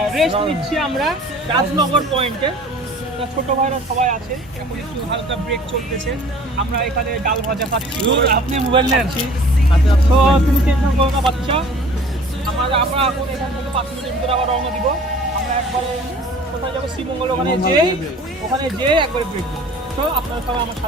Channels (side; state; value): both; normal; correlation 0.48